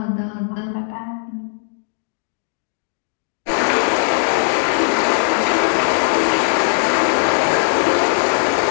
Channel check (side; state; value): right; silent; digital silence